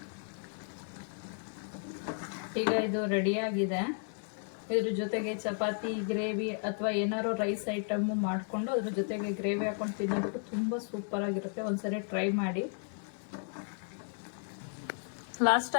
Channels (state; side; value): silent; right; 55 dB below the other